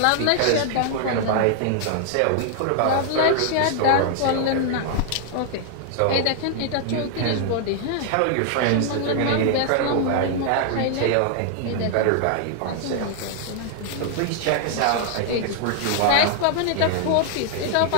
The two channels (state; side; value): different; both; correlation 0.00